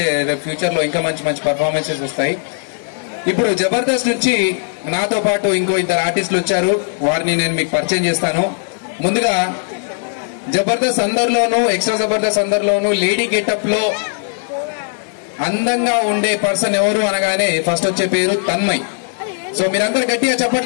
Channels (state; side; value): silent; right; 68 dB below the other